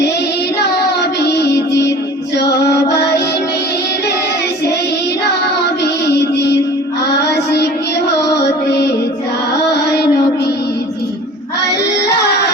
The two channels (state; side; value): normal; both; correlation 0.43